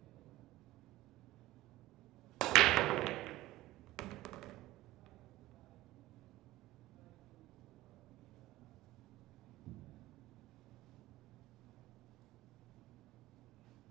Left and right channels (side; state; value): left; quieter; 16.8 dB